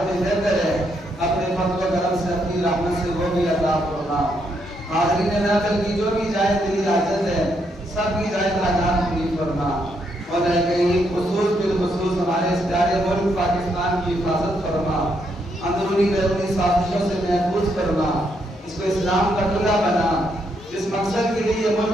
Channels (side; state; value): both; normal; correlation 0.76